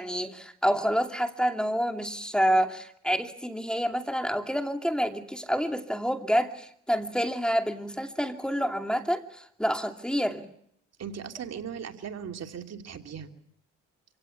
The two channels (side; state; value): both; normal; correlation 0.91